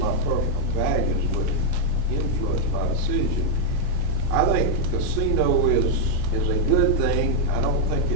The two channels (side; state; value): both; different; correlation -0.01